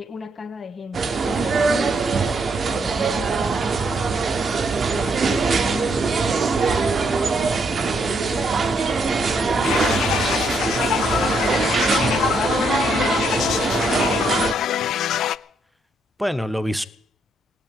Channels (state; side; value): normal; both; correlation 0.75